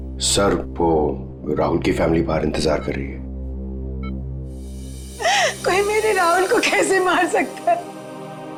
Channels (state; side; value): identical; both; correlation 1.00